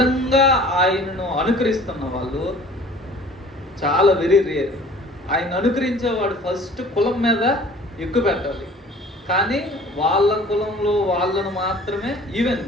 ఆయనను అనుకరిస్తున్న వాళ్ళు చాలా వెరీ రేర్. ఆయన అనుకరించేవాడు ఫస్ట్ కులం మీద ఎక్కువ పెట్టాలి, కానీ వాళ్ళ కులంలో వాళ్ళను మాత్రమే, ఈవెన్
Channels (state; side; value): normal; both; correlation 0.49